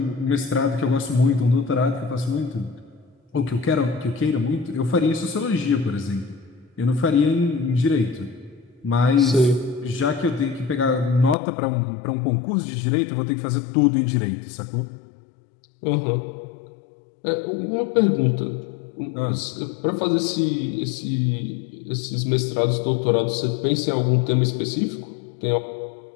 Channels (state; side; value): drops out; right; at 11.4 s